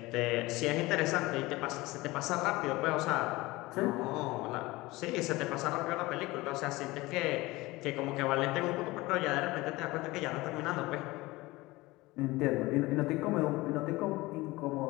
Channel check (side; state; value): right; quieter; 20.6 dB